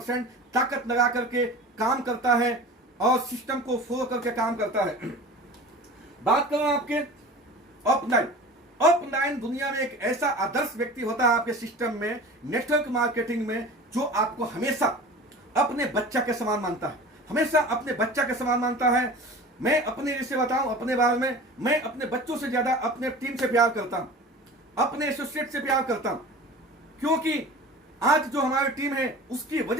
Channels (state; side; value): normal; both; correlation 0.38